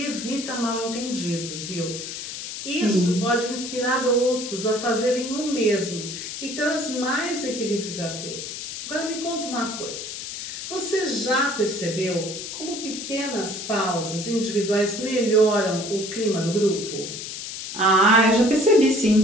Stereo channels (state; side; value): noise; left; hiss, 8 dB below the sound